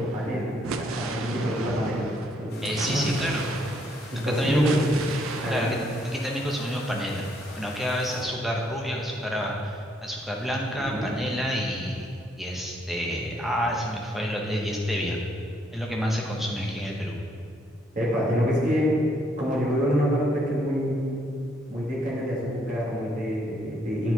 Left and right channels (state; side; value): normal; both; correlation 0.70